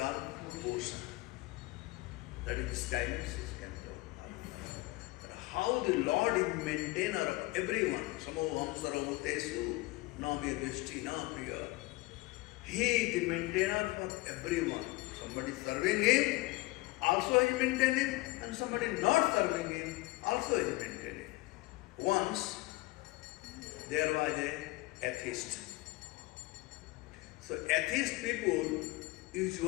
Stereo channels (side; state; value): right; quieter; 20.7 dB